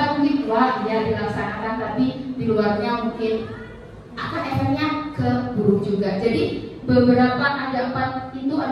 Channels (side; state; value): both; identical; correlation 1.00